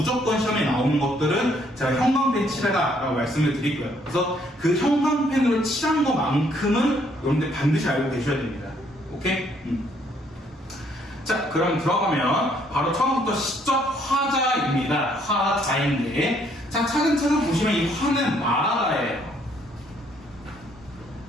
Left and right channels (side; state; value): both; normal; correlation 0.67